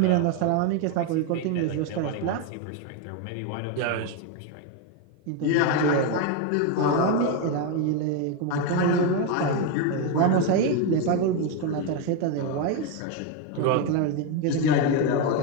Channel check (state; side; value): different; both; correlation 0.02